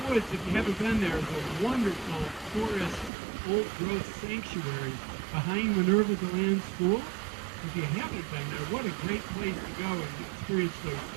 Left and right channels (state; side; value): drops out; left; at 3.1 s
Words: Woods, if you haven't been there, is a wonderful forest, old-growth sanctuary behind Minerva DeLand School. If you haven't been there, what a great place to go and experience those